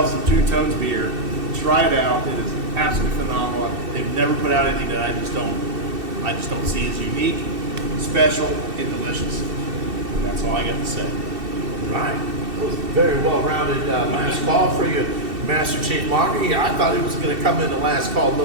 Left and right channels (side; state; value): left; late; 2.7 ms